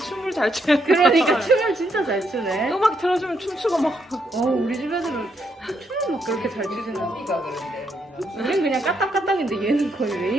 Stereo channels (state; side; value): normal; both; correlation 0.76